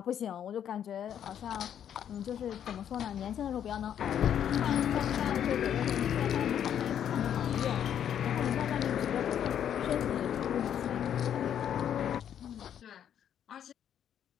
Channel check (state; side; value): quieter; right; 9.5 dB